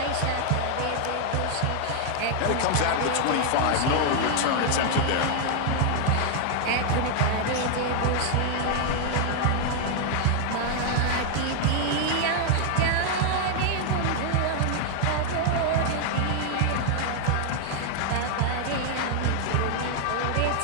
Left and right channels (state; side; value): different; both; correlation 0.00